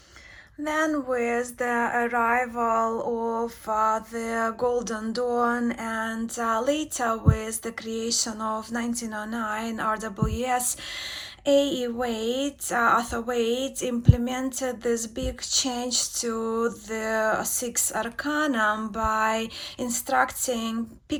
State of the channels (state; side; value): identical; both; correlation 1.00